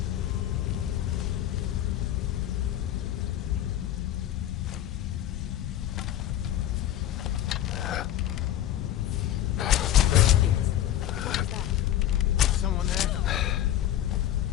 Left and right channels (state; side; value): quieter; right; 12.0 dB